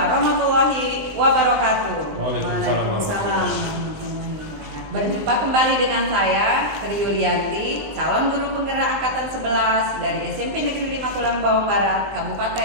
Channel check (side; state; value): left; late; 19 ms